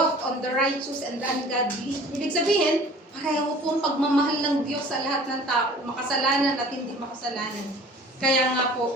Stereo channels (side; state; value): both; normal; correlation 0.47